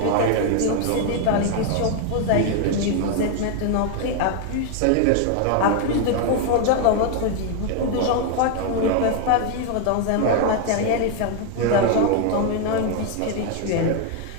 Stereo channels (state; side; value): different; both; correlation 0.01